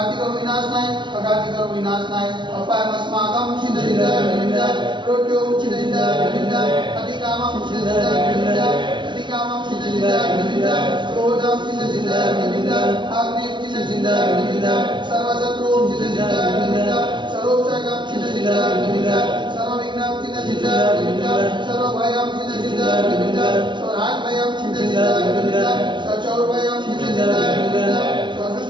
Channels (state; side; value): late; left; 0.23 ms